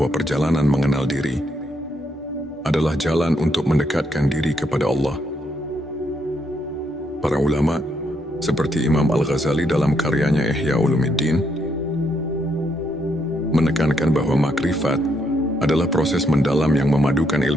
perjalanan mengenal diri adalah jalan untuk mendekatkan diri kepada Allah. Para ulama seperti Imam Al-Ghazali dalam karyanya Ihya Ulumuddin menekankan bahwa makrifat adalah proses mendalam yang memadukan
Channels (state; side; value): normal; both; correlation 0.76